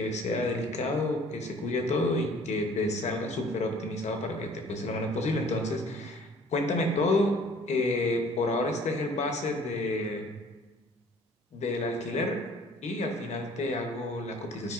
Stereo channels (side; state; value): both; normal; correlation 0.53